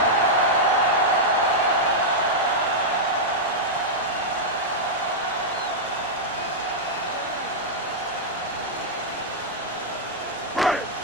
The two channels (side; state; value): both; normal; correlation -0.06